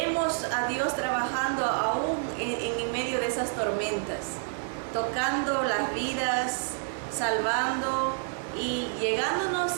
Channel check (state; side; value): silent; left; digital silence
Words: a Dios trabajando aún en medio de esas tormentas, tocando las vidas, salvando y llegándonos,